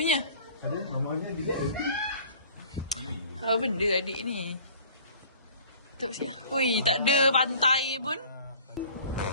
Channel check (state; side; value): inverted; both; correlation -0.48